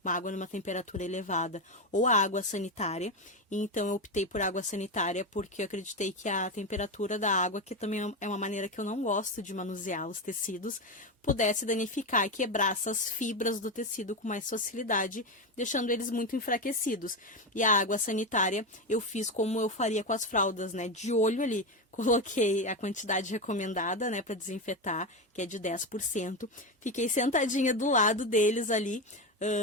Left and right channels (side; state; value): both; normal; correlation 0.14